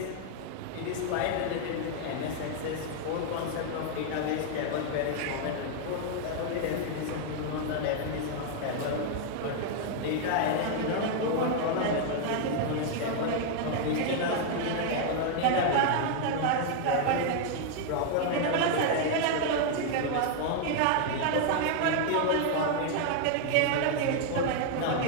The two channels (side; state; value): both; different; correlation 0.00